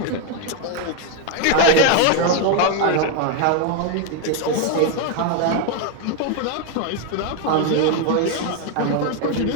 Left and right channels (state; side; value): different; both; correlation 0.01